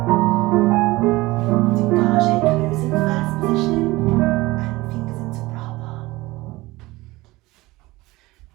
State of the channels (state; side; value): quieter; left; 20.1 dB